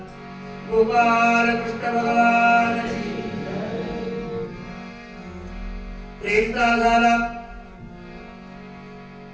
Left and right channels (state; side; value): identical; both; correlation 1.00